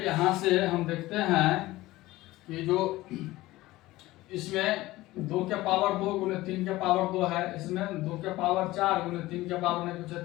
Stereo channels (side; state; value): right; quieter; 18.0 dB